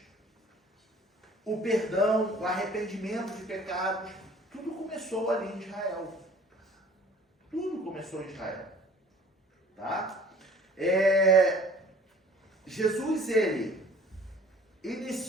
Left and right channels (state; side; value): normal; both; correlation 0.51